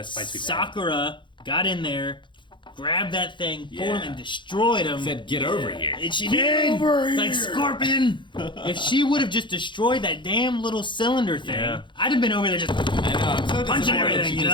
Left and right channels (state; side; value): late; right; 0.23 ms